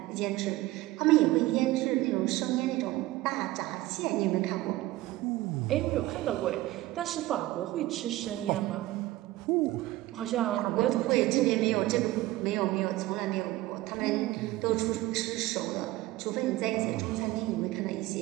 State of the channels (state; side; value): quieter; left; 17.4 dB